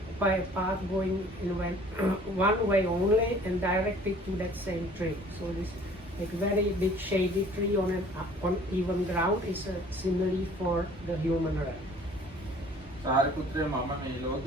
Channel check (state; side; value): normal; both; correlation 0.52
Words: by a path going in one way only and directed to that same tree. So this like very big shady tree on even ground is a simile for the human realm. සාරිපුත්‍රය මම මේ